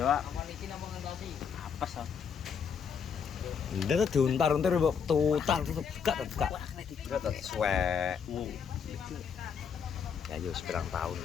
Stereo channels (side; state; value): right; quieter; 6.9 dB